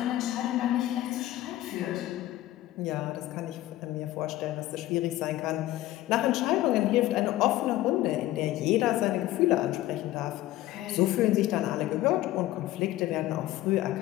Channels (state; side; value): quieter; right; 15.4 dB